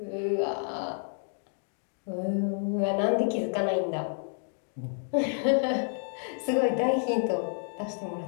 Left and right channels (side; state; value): right; silent; digital silence